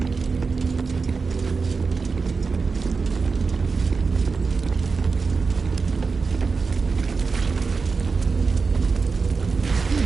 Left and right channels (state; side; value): quieter; left; 4.7 dB